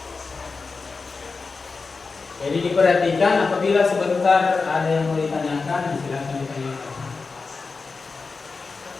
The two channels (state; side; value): quieter; right; 4.4 dB